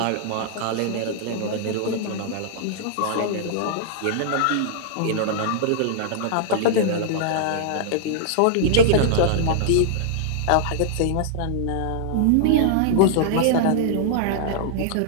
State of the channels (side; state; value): both; different; correlation -0.01